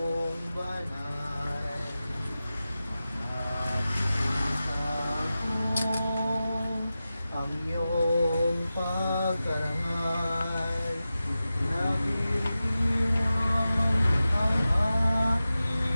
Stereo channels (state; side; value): inverted; both; correlation -0.94